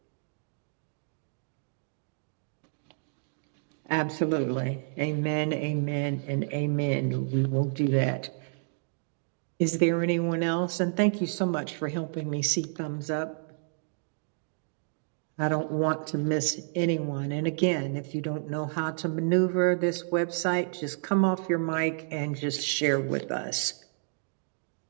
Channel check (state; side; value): silent; left; digital silence